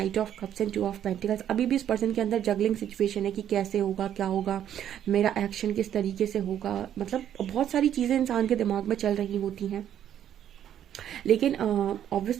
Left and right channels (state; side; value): quieter; left; 10.3 dB